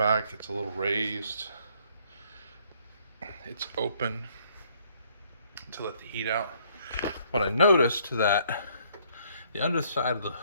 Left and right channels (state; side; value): inverted; both; correlation -0.64